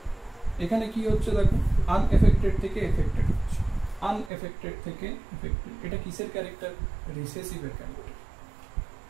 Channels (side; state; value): left; drops out; at 4.3 s